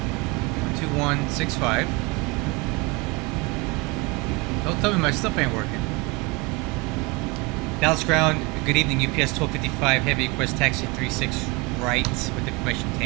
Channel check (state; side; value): quieter; left; 25.9 dB